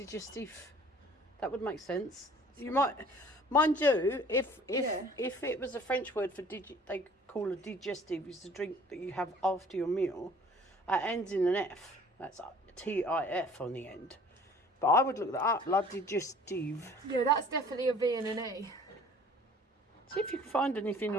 That would make sense. You might, mind you, if it was a French word for they call a digestive is the drink that you have after your meal. It ends in an F. That's TIF on the end. But I would look that up. La digestive. Yeah, that's definitely a V and an E. See if you can find anything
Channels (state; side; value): normal; both; correlation 0.51